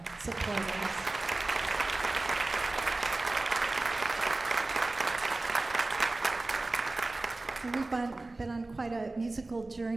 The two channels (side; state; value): left; quieter; 3.1 dB